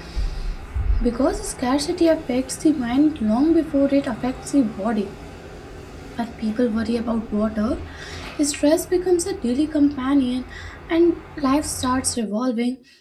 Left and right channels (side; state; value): both; identical; correlation 1.00